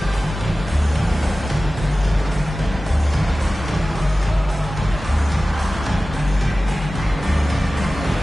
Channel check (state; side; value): normal; both; correlation 0.96